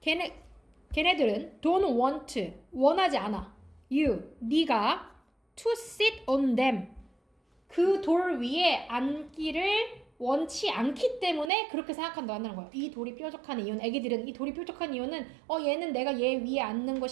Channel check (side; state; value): left; drops out; at 11.5 s